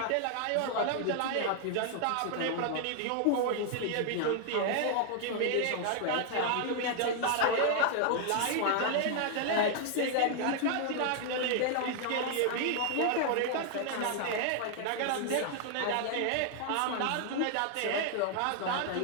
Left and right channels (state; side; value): different; both; correlation 0.00